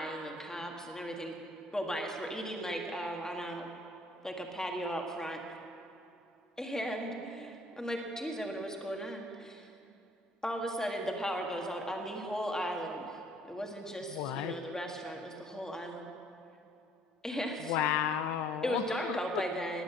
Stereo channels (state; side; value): normal; both; correlation 0.59